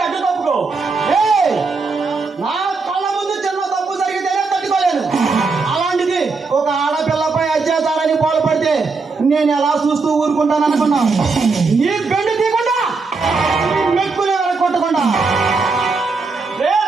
అడ్డు తప్పుకో. ఏయ్, నా కళ్ళ ముందు చిన్న తప్పు జరిగితేనే తట్టుకోలేను. అలాంటిది ఒక ఆడపిల్లపై అత్యాచారాన్ని పాల్పడితే నేను ఎలా చూస్తూ ఊరుకుంటాను అనుకున్నా? నీ బెండు తీయకుండా నీ మెక్కునే కొట్టకుండా. రే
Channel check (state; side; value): quieter; left; 4.2 dB